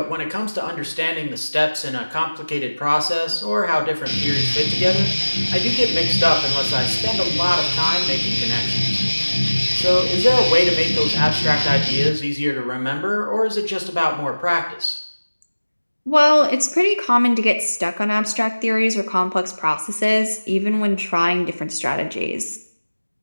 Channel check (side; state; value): both; inverted; correlation -1.00